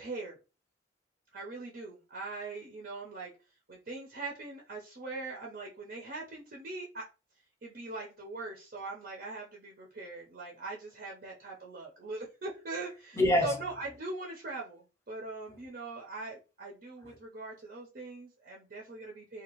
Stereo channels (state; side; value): normal; both; correlation 0.37